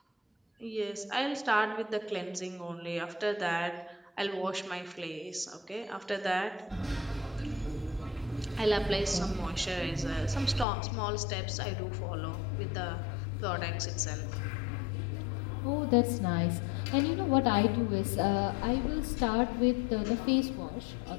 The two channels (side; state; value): right; drops out; at 10.7 s